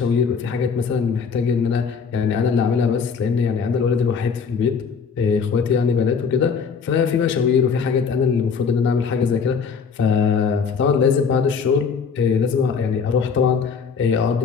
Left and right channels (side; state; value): right; quieter; 5.9 dB